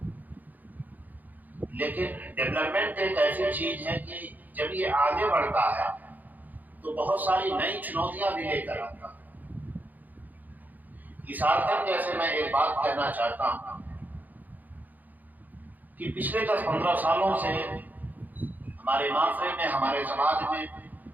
लेकिन डेवलपमेंट एक ऐसी चीज है कि जब ये आगे बढ़ता है तो बहुत सारी नई चुनौतियां भी लेकर आता है। इस आर्थिक जैसे मैं एक बात कहना चाहता हूं कि पिछले 10-15 सालों से हमारे माशरे में, हमारे समाज में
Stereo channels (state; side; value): late; left; 0.083 ms